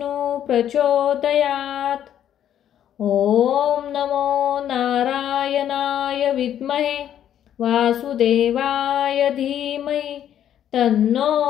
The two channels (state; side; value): quieter; right; 10.4 dB